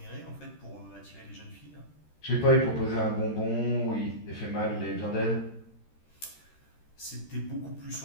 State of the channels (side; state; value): right; late; 13 ms